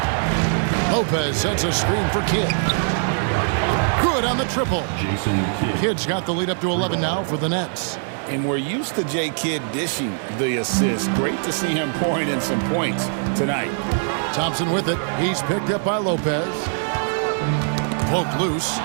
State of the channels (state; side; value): silent; left; digital silence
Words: Lopez sets a screen for Kidd. Good on the triple. Jason Kidd. Kidd's got the lead up to 11 now for the Nets. And we're used to J. Kidd dishing the assist. Great to see him pouring in some points tonight. Thompson with it. He's picked up by Lopez. Poked loose.